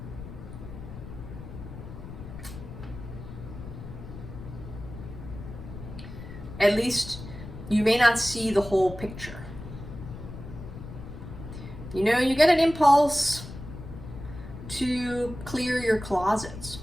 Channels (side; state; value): left; noise; rumble, 12 dB below the sound